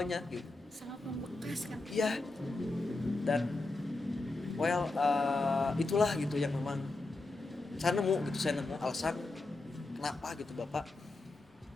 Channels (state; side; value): quieter; right; 3.2 dB